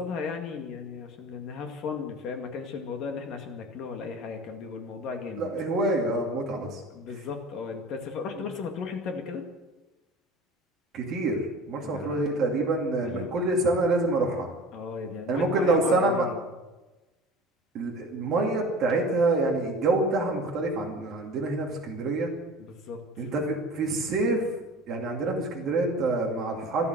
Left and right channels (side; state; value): both; normal; correlation 0.39